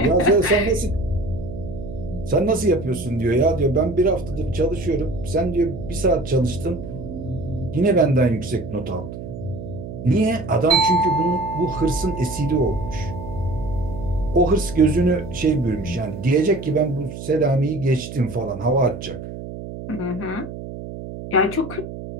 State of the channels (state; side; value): noise; right; hum, 10 dB below the sound